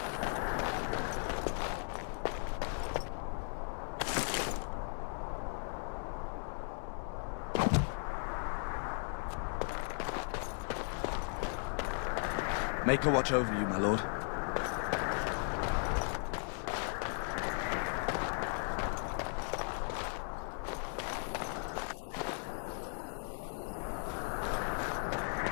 Make a watch over you, my lord.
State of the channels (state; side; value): silent; right; 53 dB below the other